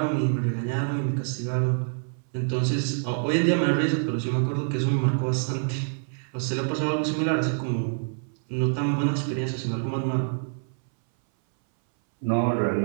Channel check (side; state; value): left; silent; 60 dB below the other